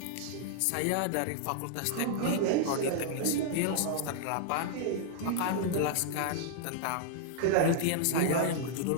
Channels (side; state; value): both; different; correlation -0.01